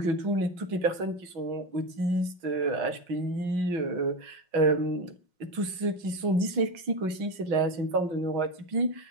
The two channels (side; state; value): left; late; 5.5 ms